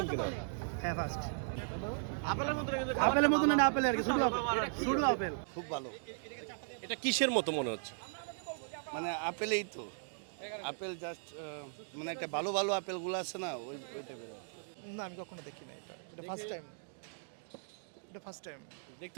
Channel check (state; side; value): silent; left; digital silence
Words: কিনা? হ্যাঁ ফার্স্ট আপেলের মতো আপেলের মতো না আপেল আর কি শুধু আপেল খুব ভালো, এটা কিসের মতো মনে হচ্ছে? মানে আপেলেই তো আপেল জাস্ট মানে একটা ভালো ভালো আপেলগুলো আছে না ওই টাইপের। না আমি কখনো দেখি না এটা ফার্স্ট টাইম